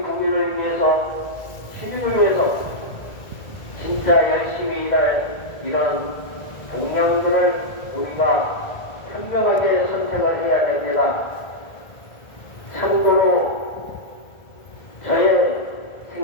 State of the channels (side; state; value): right; late; 1.7 ms